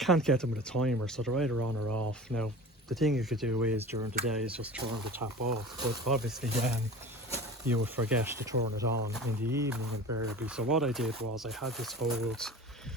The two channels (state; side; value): normal; both; correlation 0.37